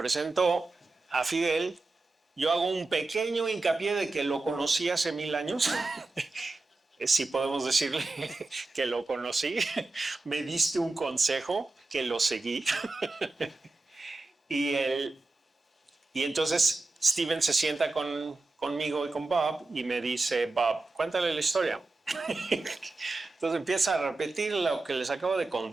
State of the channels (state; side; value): quieter; left; 3.3 dB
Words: a Fidel. Yo hago un pequeño hincapié de que lo conocí hace 1000 años. Si podemos decirle que lo conocí. Me diste un consejo que lo seguí. y entonces Steven se sienta conmigo y con Bob y me dice, Bob, cuéntale la historia. Entonces empieza a repetir lo que les acabo de